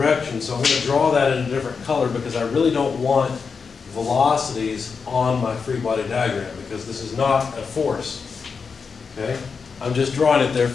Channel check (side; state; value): right; quieter; 5.4 dB